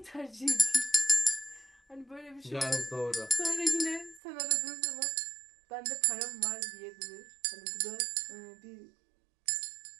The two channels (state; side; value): drops out; left; at 4.2 s